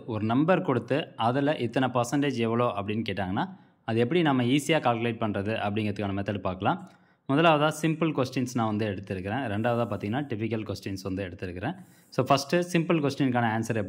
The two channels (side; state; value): both; identical; correlation 1.00